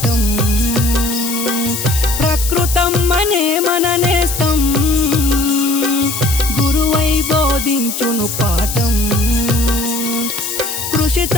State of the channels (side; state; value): left; noise; hiss, 5 dB below the sound